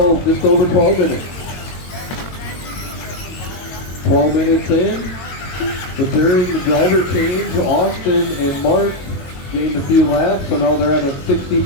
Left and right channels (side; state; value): right; late; 22 ms